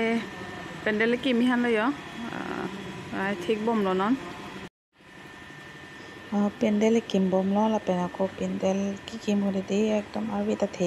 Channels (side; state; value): both; identical; correlation 1.00